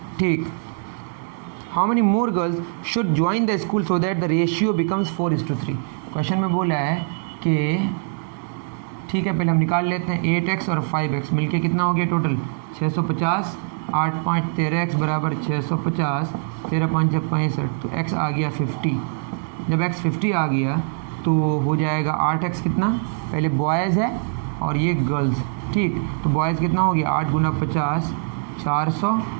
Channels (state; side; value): silent; left; digital silence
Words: ठीक। How many more girls should join the school so that the ratio becomes 4:3। Question में बोला है कि ठीक है, पहले हम निकाल लेते हैं 8x और 5x मिलके कितना हो गया टोटल 650, 8 5 13x बराबर 650, 13 5 65, तो x आ गया 50। जब x 50 आ गया तो हो जाएगा 8x कितना, पहले बॉयज़ है और ये गर्ल्स, ठीक। तो बॉयज़ कितना हो गया 8 गुना 50 400,